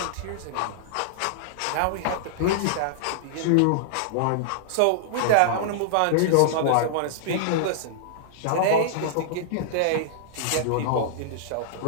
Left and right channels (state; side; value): different; both; correlation -0.01